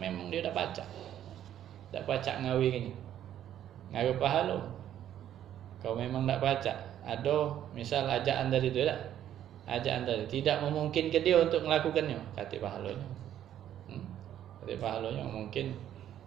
dia dah pacak ngawi gini. Ngawi pahala. Kau memang tak pacak. Ada misal ajaan dari itu tak? Ajaan tadi tidak memungkinkan dia untuk melakukannya, kata pahalanya. Kata pahalanya mungkin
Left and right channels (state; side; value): quieter; left; 11.0 dB